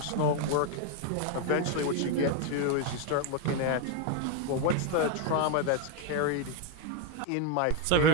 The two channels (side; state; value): both; different; correlation 0.01